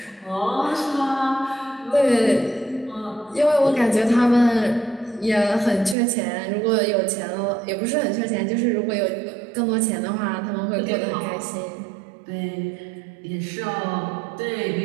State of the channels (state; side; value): drops out; left; at 6.0 s